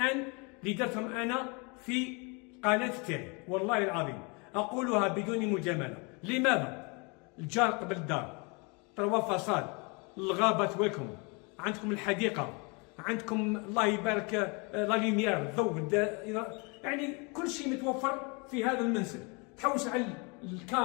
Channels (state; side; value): quieter; right; 31.2 dB